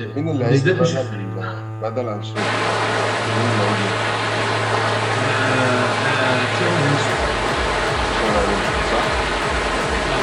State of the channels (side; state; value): both; identical; correlation 1.00